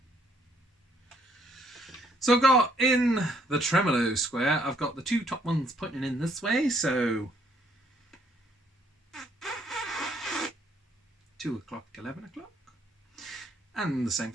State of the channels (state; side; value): normal; both; correlation 0.68